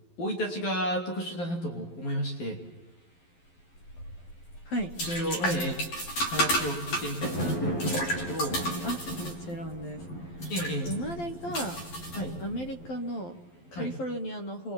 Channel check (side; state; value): right; late; 12 ms